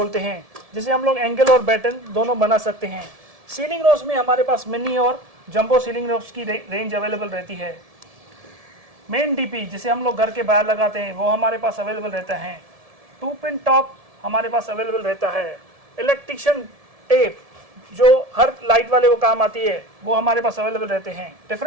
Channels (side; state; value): left; late; 1.7 ms